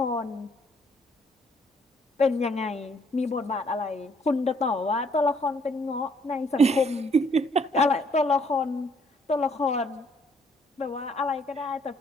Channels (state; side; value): normal; both; correlation 0.65